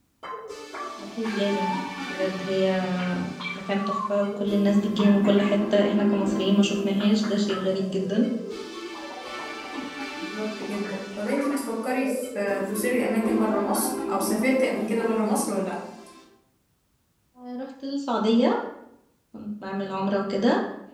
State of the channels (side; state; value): both; identical; correlation 1.00